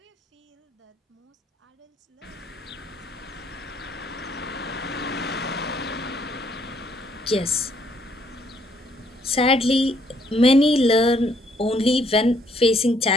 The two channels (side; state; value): both; normal; correlation 0.68